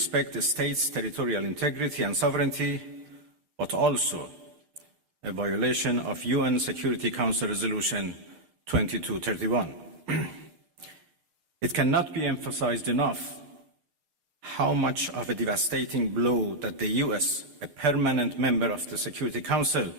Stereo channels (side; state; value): left; late; 6.6 ms